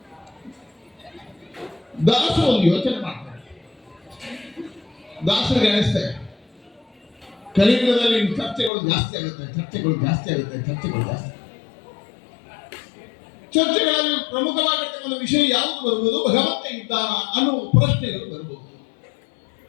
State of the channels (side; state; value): right; drops out; at 8.7 s